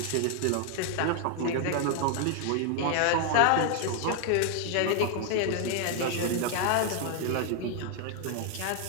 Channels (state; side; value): different; both; correlation 0.00